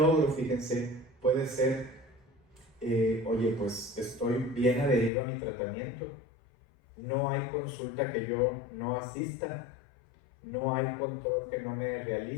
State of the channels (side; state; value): right; drops out; at 5.1 s